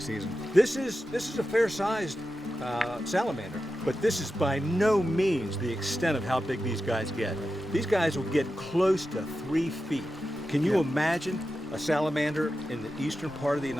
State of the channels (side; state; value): both; normal; correlation 0.91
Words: season. This is a fair-sized salamander, but this is by no means the extent of how big these guys get. These guys will get close to 3 feet. Can you imagine a salamander in the eastern part of the